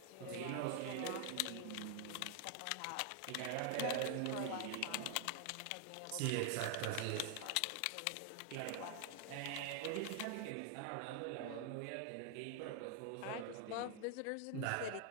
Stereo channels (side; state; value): both; different; correlation 0.00